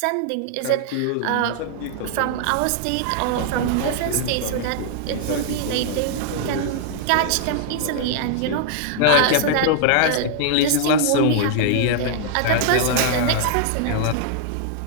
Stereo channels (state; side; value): different; both; correlation -0.01